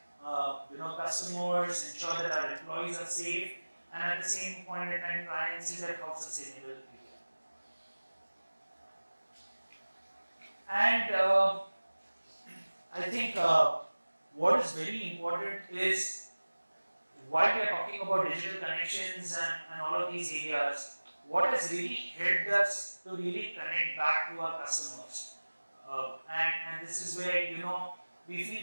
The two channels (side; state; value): both; inverted; correlation -1.00